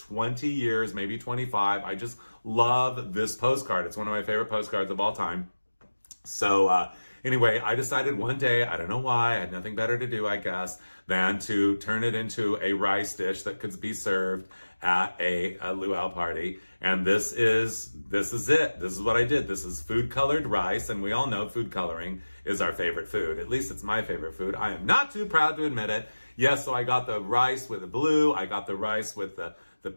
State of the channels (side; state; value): both; inverted; correlation -1.00